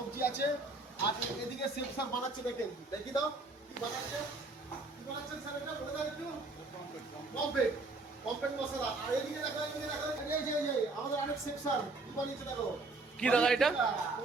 আছে। আর এদিকে শেফ স্যার বানাচ্ছে, দেখেন দেখি দাও কি বানাচ্ছে। কি বানাচ্ছেন স্যার, এটা বলে দাও একটু। পমফ্রেট, পমফ্রেট মশলা। আর এদিকে দেখো, এদিকে দেখো, এই যে আমাদের আরেক শেফ স্যার কি বানিয়েছে দেখো। কি দাদা এটা?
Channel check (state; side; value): quieter; left; 3.3 dB